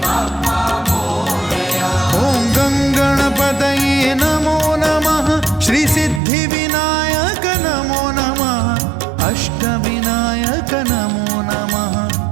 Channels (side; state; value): left; drops out; at 6.2 s